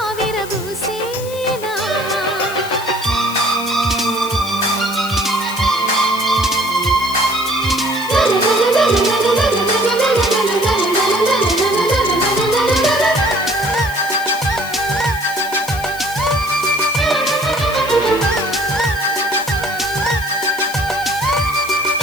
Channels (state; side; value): noise; left; hiss, 14 dB below the sound